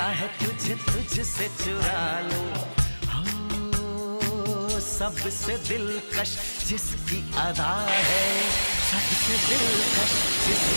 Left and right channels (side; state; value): both; inverted; correlation -1.00